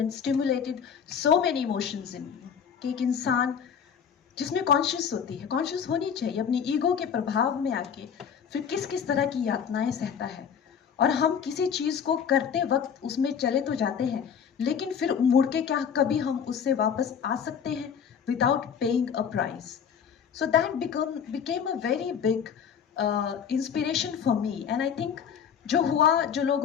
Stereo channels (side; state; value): right; quieter; 7.5 dB